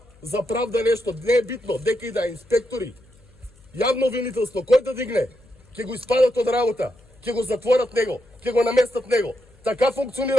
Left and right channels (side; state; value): left; noise; hum, 28 dB below the sound